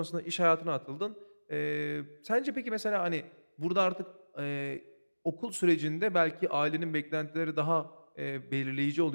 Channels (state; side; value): inverted; both; correlation -1.00